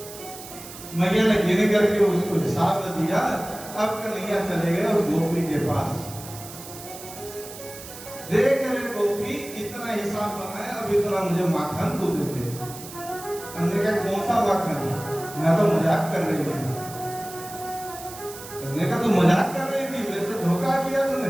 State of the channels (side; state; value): right; noise; hiss, 14 dB below the sound